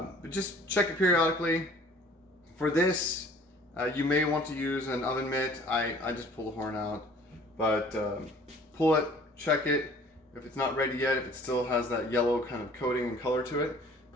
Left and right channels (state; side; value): normal; both; correlation 0.52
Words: just check it periodically. For this, you may want to use an oven mitt. I just pull the horn out, but pull it, check it. If it's not ready yet, if it still has that yellow kind of coating and color to it,